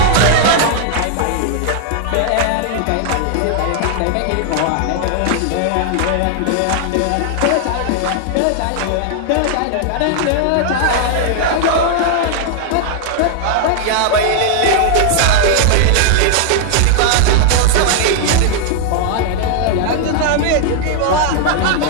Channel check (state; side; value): different; both; correlation 0.00